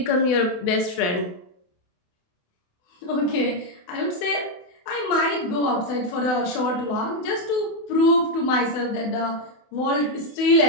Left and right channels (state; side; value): late; right; 28 ms